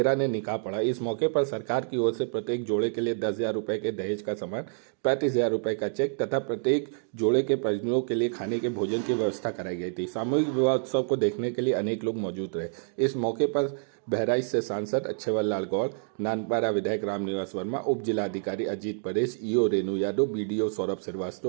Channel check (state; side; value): silent; left; digital silence